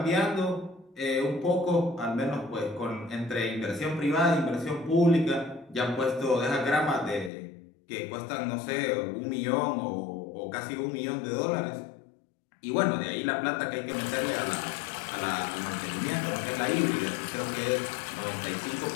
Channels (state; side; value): drops out; right; at 7.3 s